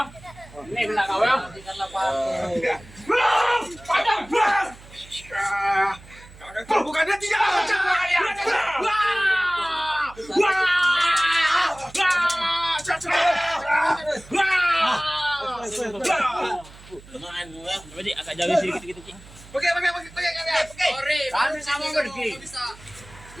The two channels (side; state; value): right; noise; hum, 21 dB below the sound